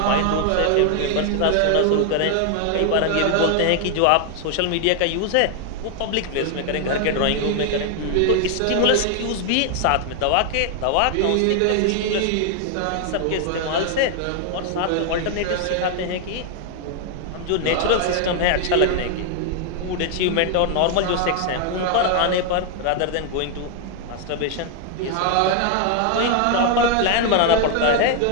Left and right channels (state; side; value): different; both; correlation 0.00